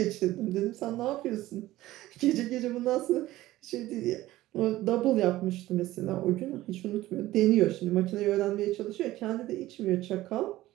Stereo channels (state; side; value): quieter; left; 16.2 dB